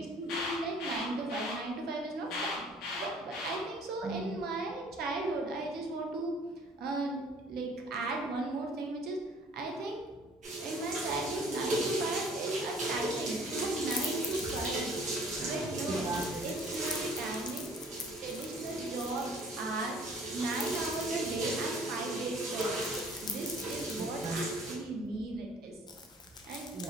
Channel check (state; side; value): normal; both; correlation 0.54